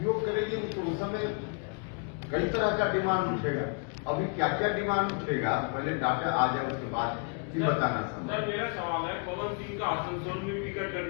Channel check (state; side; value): quieter; right; 39.4 dB